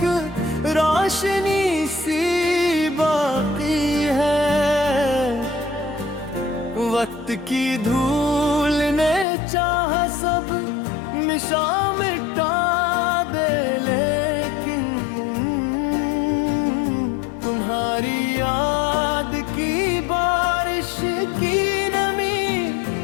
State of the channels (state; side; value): drops out; right; at 9.2 s